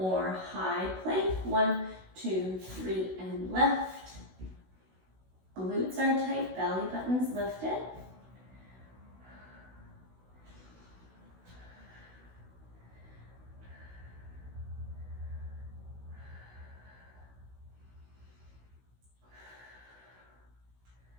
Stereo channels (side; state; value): left; late; 16 ms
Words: high plank. 1, 2, 3, and lift. Glutes are tight, belly button's lifted.